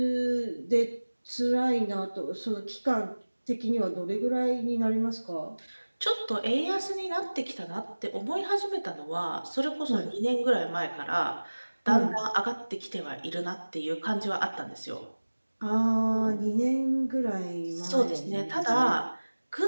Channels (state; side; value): inverted; both; correlation -1.00